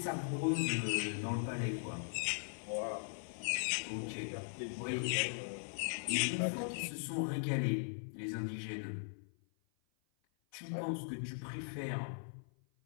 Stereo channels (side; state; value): right; silent; 51 dB below the other